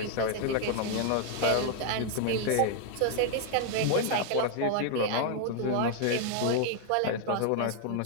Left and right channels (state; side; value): different; both; correlation 0.00